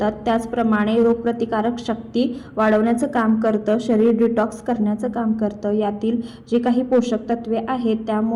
त्याचप्रमाणे रोगप्रतिकारक शक्ती वाढवण्याचं काम करतं, शरीर डिटॉक्स करण्याचं काम करतं। यातील जे काही पोषक तत्वे आहेत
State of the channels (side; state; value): both; identical; correlation 1.00